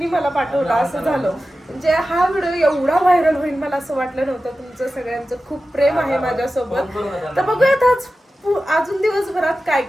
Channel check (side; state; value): both; normal; correlation 0.94